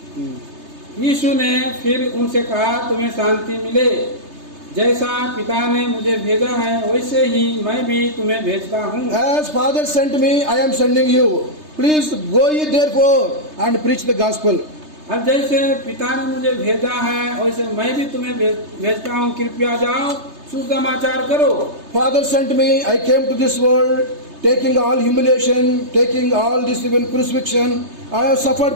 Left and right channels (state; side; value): late; left; 3.3 ms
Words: यीशु ने फिर उनसे कहा तुम्हें शांति मिले, जैसा पिता ने मुझे भेजा है वैसे ही मैं भी तुम्हें भेजता हूँ। As Father sent me, I am sending you. Please go ye therefore and preach the gospel. और जैसे पिता ने मुझे भेजा है वैसे मैं भी तुम्हें भेजता हूँ, कृपया जाओ सुसमाचार करो। Father sent me, I came to this world, taking all humiliation, taking all this even crucifixion. I have suffered